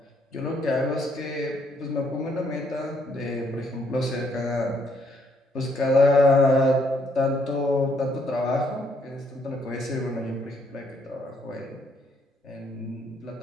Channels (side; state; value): both; normal; correlation 0.70